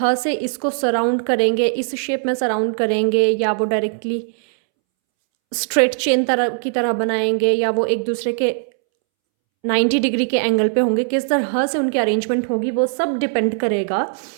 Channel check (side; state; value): left; silent; 66 dB below the other